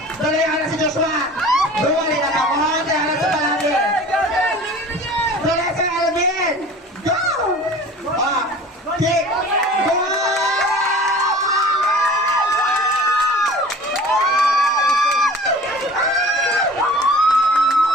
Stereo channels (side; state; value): both; normal; correlation 0.42